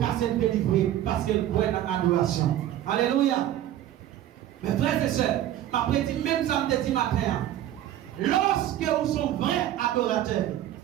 cassé le délivré parce qu'elle croit dans l'adoration. Alléluia. Mes frères et sœurs, ma prédit même samedi matin, lorsque vous sont vrais adorateurs,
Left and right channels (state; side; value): quieter; left; 12.4 dB